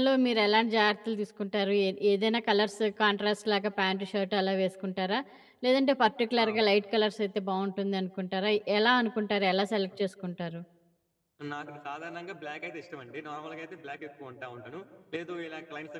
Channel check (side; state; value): both; identical; correlation 1.00